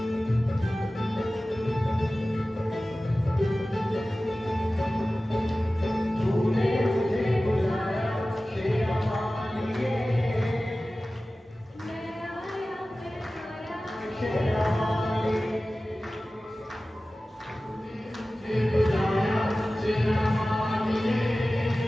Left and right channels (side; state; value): both; normal; correlation 0.96